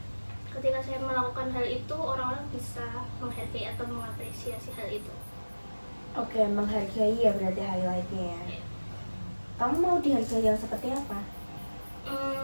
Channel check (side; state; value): both; inverted; correlation -1.00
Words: Ketika saya melakukan hal itu orang-orang bisa menghargai atau mengapresiasi hal itu. Oke, menghargai ya berarti highlightnya ya. Iya. Kamu mau dihargai yang seperti apa?